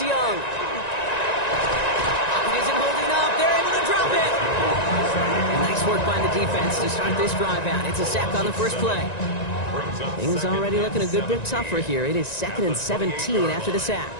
Pocket isn't holding up. They're able to drop it. And nice work by the defense to start this drive out. It's a sack on the first play. Things already looking a good bit tougher here. It is 2nd and 17 after the sack.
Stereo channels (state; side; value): late; right; 1.9 ms